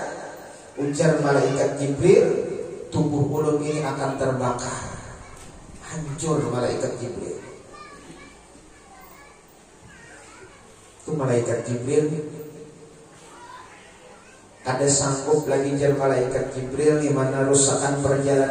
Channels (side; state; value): both; identical; correlation 1.00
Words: ujar malaikat Jibril, tubuh ulun ini akan terbakar, hancur malaikat Jibril." Itu malaikat Jibril ada sanggup lagi, jar malaikat Jibril, di mana rusakan